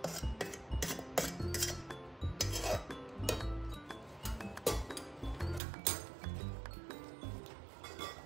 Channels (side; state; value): left; drops out; at 5.6 s